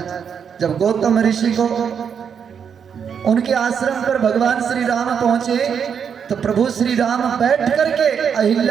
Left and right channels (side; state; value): left; quieter; 7.3 dB